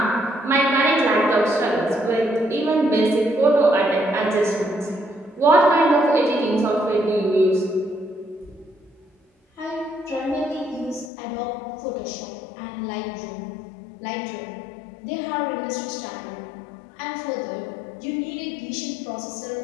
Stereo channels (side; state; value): right; drops out; at 11.1 s